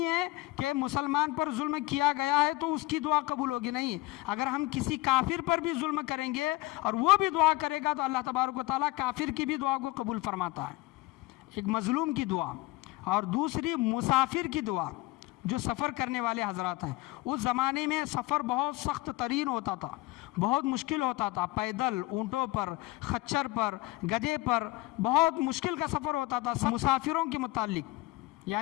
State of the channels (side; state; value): right; quieter; 20.0 dB